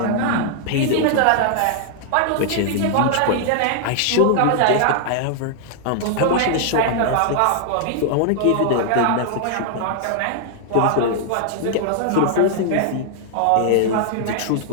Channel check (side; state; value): both; different; correlation 0.00